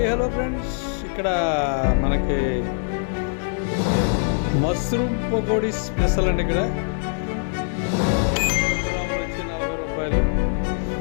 hello friends, ఇక్కడ మనకి mushroom pakodi special అండి. ఇక్కడ గ్రాములు వచ్చి 40 రూపాయలు.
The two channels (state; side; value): silent; right; digital silence